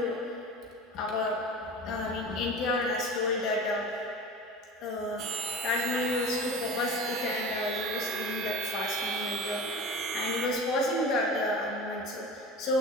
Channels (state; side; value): normal; both; correlation 0.34